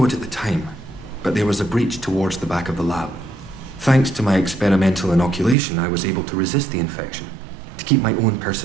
it at the time, but there was a breach towards the back of the lab. Thanks to my experimental inoculation, I was able to resist the infection, to keep my own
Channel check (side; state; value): left; drops out; at 5.6 s